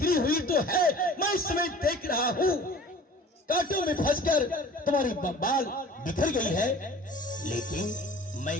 हुई तो है। मैं इस समय देख रहा हूं कांटों में फंसकर तुम्हारी बाल बिखर गई है, लेकिन मैं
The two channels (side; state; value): both; normal; correlation 0.45